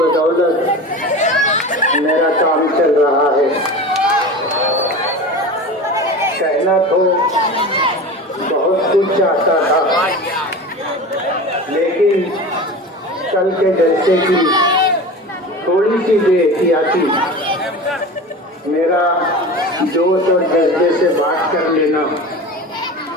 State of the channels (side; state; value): both; normal; correlation 0.32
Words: بدولت میرا کام چل رہا ہے. کہنا تو بہت کچھ چاہتا تھا، لیکن کل کے جلسے کی تھوڑی سی بے احتیاطی میرا جوش اور جذبے سے بات کر لینا